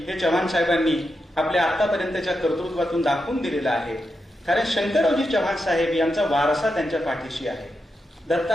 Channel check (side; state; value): both; normal; correlation 0.87